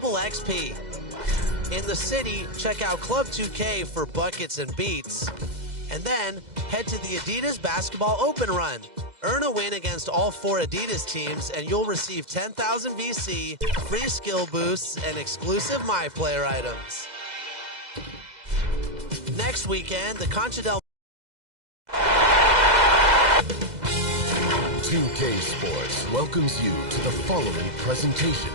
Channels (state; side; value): late; left; 2.0 ms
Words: XP. In the city, check out Club 2K for buckets and beats. And then, head to the Adidas Basketball Open Run. Earn a win against all 4 Adidas teams, and you'll receive 10,000 VC, free skill boosts, and exclusive MyPlayer items. Next weekend, the Concha del 2K Sports welcomes you to the following presentation